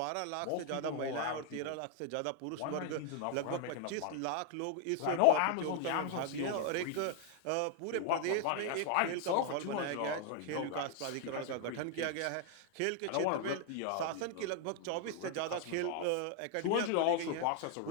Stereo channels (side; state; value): both; different; correlation 0.00